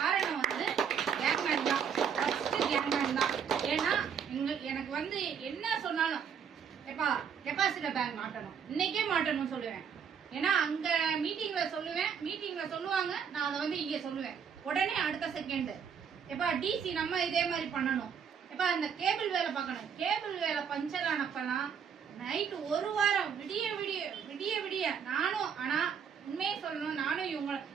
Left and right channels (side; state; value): left; quieter; 7.3 dB